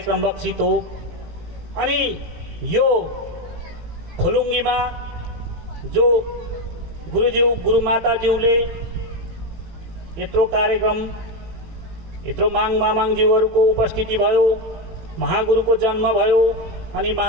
लक्षित हो। अनि यो फुलुङ्गीमा जो गुरुज्यू गुरुमाताज्यूले यत्रो कार्यक्रम, यत्रो मामाङज्यूहरूको उपस्थिति भयो, महागुरुको जन्म भयो, अनि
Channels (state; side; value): late; left; 17 ms